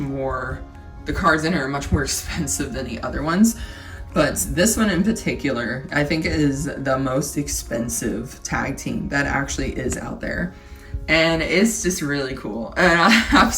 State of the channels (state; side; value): identical; both; correlation 1.00